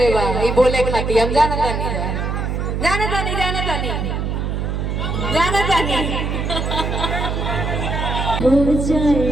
बा ई बोले खाती हम जाना तानी जाना तानी जाना तानी जाना तानी हो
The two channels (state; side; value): noise; right; hum, 1 dB below the sound